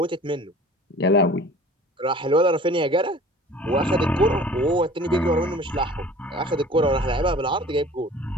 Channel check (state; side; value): normal; both; correlation 0.45